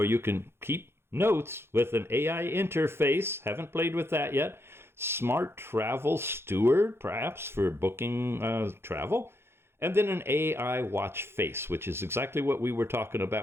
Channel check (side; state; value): left; late; 0.12 ms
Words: you can keep notes with an AI interface. Haven't played with that yet. Smart Travel Steward, perhaps for booking travel. And then an AI watch face, which is exactly what we were talking